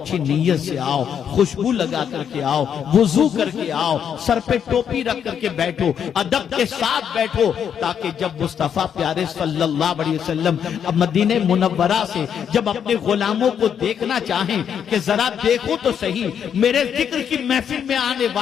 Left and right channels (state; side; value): quieter; right; 8.2 dB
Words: نیت سے آؤ، خوشبو لگا کر کے آؤ، وضو کر کے آؤ، سر پہ ٹوپی رکھ کر کے بیٹھو، ادب کے ساتھ بیٹھو، تاکہ جب مصطفیٰ پیارے صلی اللہ علیہ وسلم مدینہ منورہ سے جب اپنے غلاموں کو دیکھنا چاہیں کہ ذرا دیکھو تو صحیح میرے ذکر کی محفل میں آنے